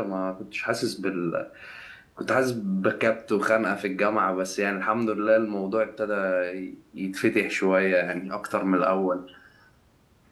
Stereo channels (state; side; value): identical; both; correlation 1.00